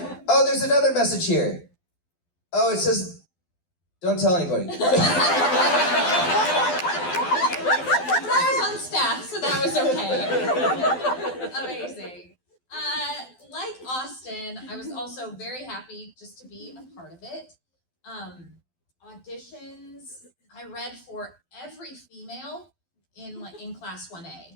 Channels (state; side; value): late; right; 12 ms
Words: "Oh, there's another message here. Oh, it says, don't tell anybody." I was on staff, so that was okay. Amazing. Like Austin, I was also very happy just to be a part of it. Auditions, I read for every female in class